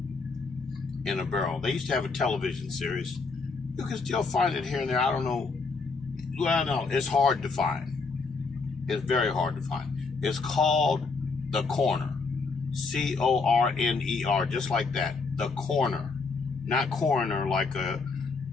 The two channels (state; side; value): quieter; right; 4.3 dB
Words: in a barrel. They used to have a television series. You can still find it here and there. I don't know. Well, no, it's hard to find. It's very hard to find. It's called The Corner. Corner, just like that. The Corner. Not coroner like a